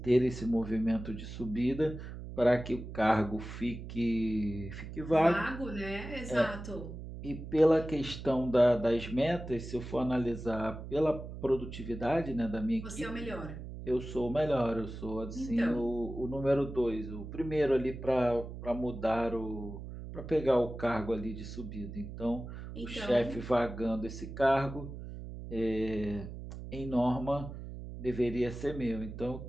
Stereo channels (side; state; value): right; noise; hum, 10 dB below the sound